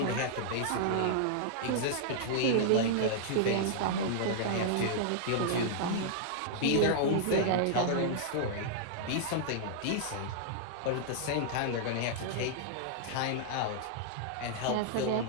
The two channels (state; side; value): different; both; correlation -0.01